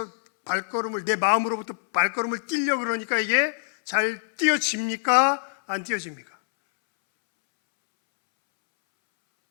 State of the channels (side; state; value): right; silent; 62 dB below the other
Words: 내 마음으로부터 발걸음을 뛰려 그러니까 이게 잘 뛰어집니까? 안 뛰어집니까?